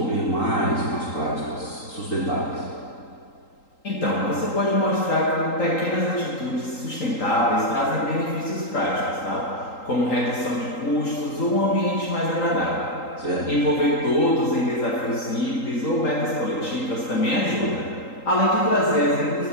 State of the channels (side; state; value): right; late; 3.8 ms